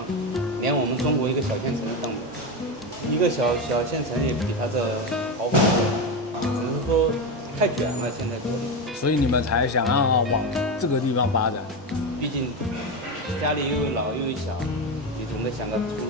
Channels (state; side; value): normal; both; correlation 0.15